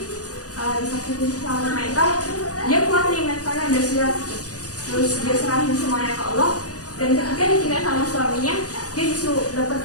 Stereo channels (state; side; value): late; right; 0.67 ms